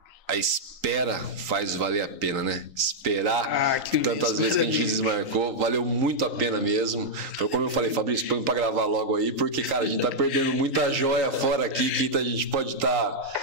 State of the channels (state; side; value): late; left; 3.8 ms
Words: espera faz valer a pena, né? Esperar tantas vezes que a gente desmarcou, valeu muito a pena mesmo. Foi como eu falei, Fabrício, põe pra gravar logo aí, porque, cara, a gente tá perdendo muita joia fora aqui que a gente pode